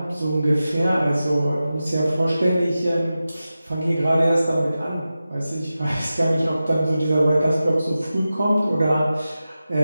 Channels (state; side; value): inverted; both; correlation -0.94